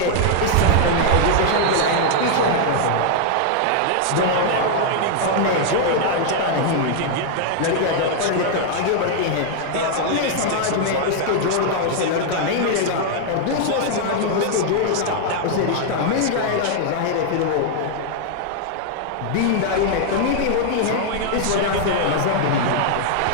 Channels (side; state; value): both; different; correlation 0.00